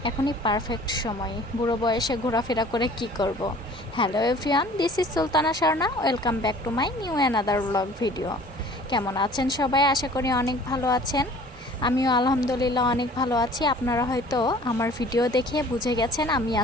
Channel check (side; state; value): both; normal; correlation 0.49